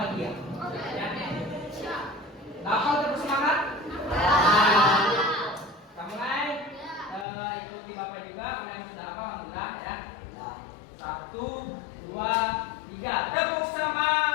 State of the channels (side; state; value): right; drops out; at 7.2 s